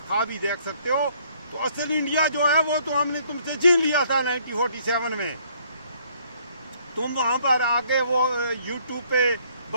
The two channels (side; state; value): both; inverted; correlation -0.64